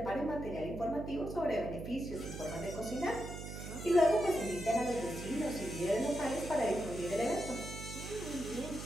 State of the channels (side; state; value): right; noise; hum, 8 dB below the sound